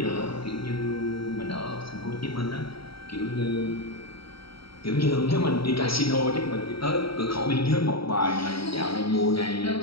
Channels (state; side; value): late; right; 0.75 ms